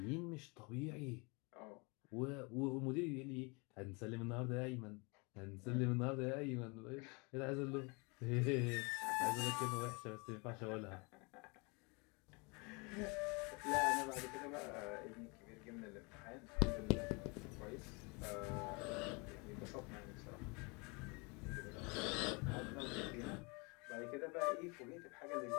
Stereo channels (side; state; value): right; quieter; 29.9 dB